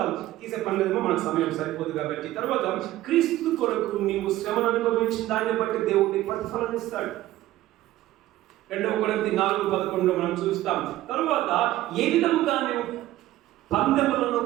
తీసే పనులేమో మనకు సమయం సరిపోదు కాబట్టి తర్వాత క్రీస్తు కొరకు నీవు శ్రమను అనుభవించిన దాన్ని బట్టి దేవుడికి ప్రతిఫలం ఇస్తాడు. 2 కొరింథీ 4:11 మనం చూస్తాం. తర్వాత ఏ విధముగా నువ్వు పందెములను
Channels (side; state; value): left; quieter; 15.2 dB